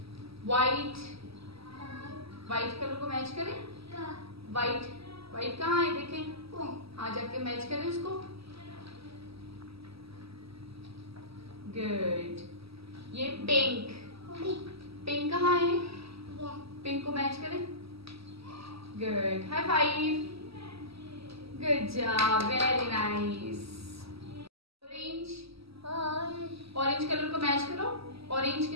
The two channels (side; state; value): left; late; 0.76 ms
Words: व्हाइट, व्हाइट कलर को मैच करें, व्हाइट, व्हाइट कहाँ है देखें, हाँ जाके मैच करें उसको, गुड। ये पिंक, पिंक कहाँ है? पिंक को मैच करें, good, high five, good job, very nice. Orange, orange colour को मैच करो ऑरेंज